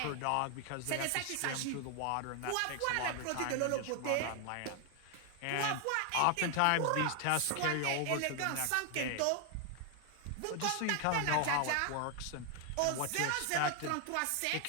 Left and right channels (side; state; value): both; different; correlation 0.00